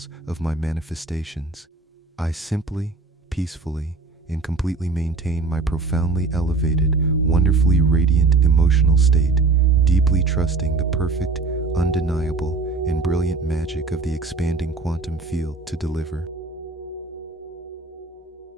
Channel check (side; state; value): left; quieter; 3.8 dB